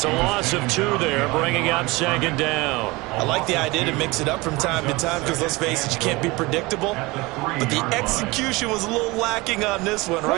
a loss of 2 there, bringing up 2nd down. I like the idea to mix it up from time to time because, let's face it, you can't be predictable. But the execution was a little lacking on this one,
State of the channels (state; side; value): quieter; left; 23.0 dB